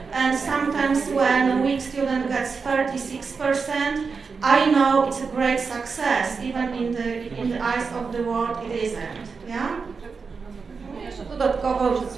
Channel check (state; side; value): quieter; left; 5.1 dB